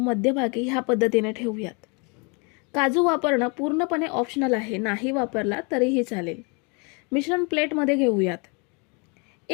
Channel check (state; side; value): quieter; right; 32.7 dB